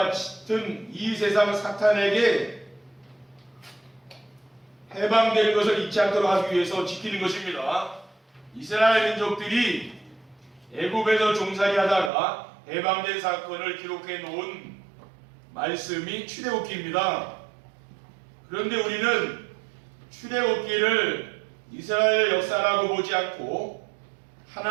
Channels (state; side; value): drops out; left; at 12.1 s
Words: 같은 이 세상 사탄에게 해방될 것을 잊지 않도록 하기 위해서 지키는 것입니다. 이스라엘 민족들이 애굽에서 종살이 하다가 해방된 사건을 기록해 놓은 말씀이 출애굽기입니다. 그런데 우리는 출애굽기를 이스라엘 역사라고 보지 않고